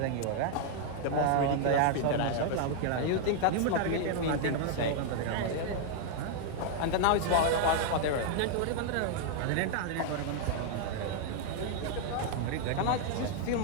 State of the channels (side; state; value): both; different; correlation 0.00